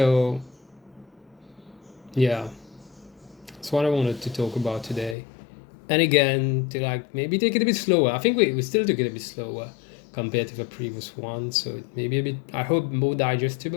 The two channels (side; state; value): right; drops out; at 5.2 s